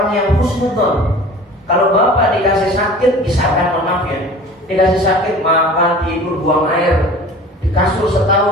yang husnudzon. Kalau bapak dikasih sakit, misalkan maaf ya, dikasih sakit makan, tidur, buang air, di kasur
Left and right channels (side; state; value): both; normal; correlation 0.42